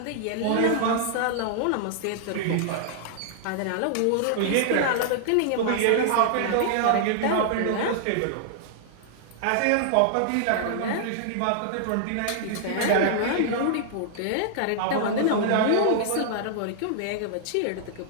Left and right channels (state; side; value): different; both; correlation -0.01